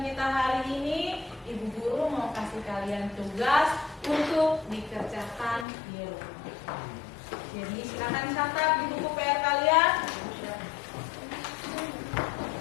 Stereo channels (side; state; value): right; drops out; at 5.7 s